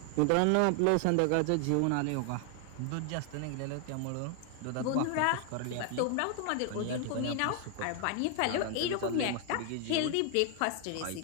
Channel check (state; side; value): different; both; correlation 0.00